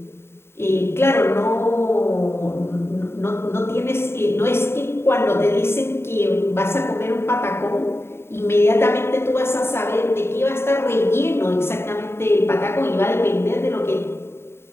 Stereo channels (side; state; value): right; late; 0.12 ms